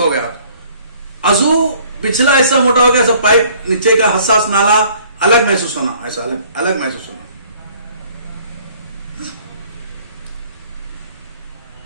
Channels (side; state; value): both; inverted; correlation -0.57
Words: गया, अजू पिछला हिस्सा मोटा हो गया, सब पाइप नीचे का हसास नाला अलग महसूस होना, ऐसा अलग अलग महसूस होना।